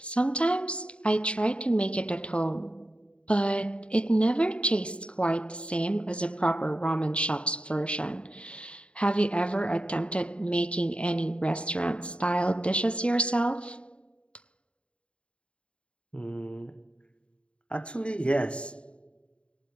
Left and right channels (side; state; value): right; late; 0.058 ms